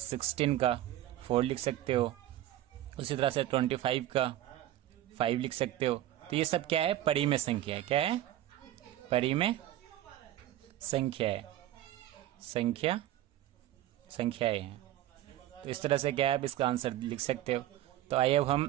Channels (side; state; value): left; quieter; 13.6 dB